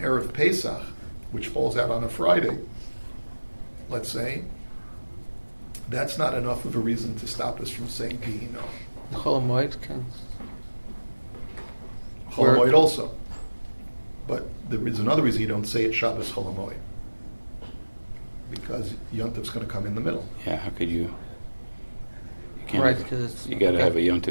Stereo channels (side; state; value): both; inverted; correlation -1.00